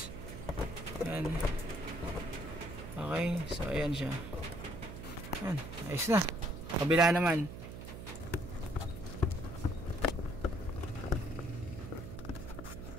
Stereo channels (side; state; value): right; noise; hum, 10 dB below the sound